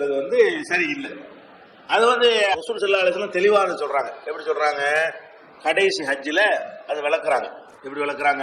சரியில்லை. அது ரசூல் ஸல்லல்லாஹு அலைஹி வஸல்லம் தெளிவாக சொல்றாங்க. எப்படி சொல்றாங்க? கடைசி ஹஜ்ஜில அது விளக்குறாங்க. எப்படி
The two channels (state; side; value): identical; both; correlation 1.00